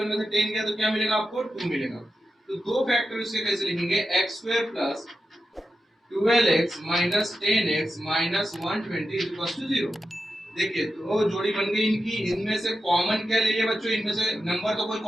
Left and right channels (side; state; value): both; normal; correlation 0.90